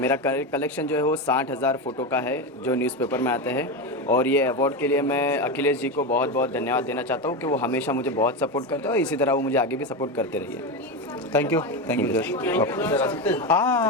कलेक्शन जो है वो 60,000 फ़ोटो का है जो न्यूज़पेपर में आते हैं, और ये अवार्ड के लिए मैं अखिलेश जी को बहुत बहुत धन्यवाद देना चाहता हूँ कि वो हमेशा मुझे बहुत सपोर्ट करते हैं और इसी तरह वो मुझे आगे भी सपोर्ट करते रहिए। Thank you sir.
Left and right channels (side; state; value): both; normal; correlation 0.16